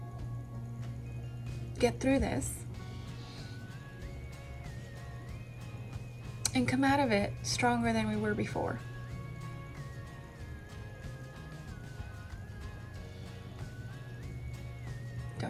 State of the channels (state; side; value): identical; both; correlation 1.00